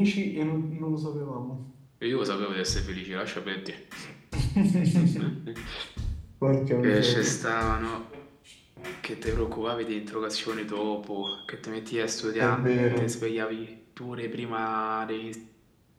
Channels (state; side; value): identical; both; correlation 1.00